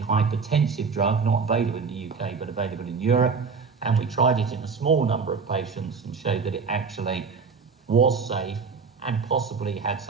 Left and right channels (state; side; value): quieter; left; 5.2 dB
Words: drug, not available in the UK, but available in Europe. And we tried it in a small number of patients and showed that it actually was safe and possibly had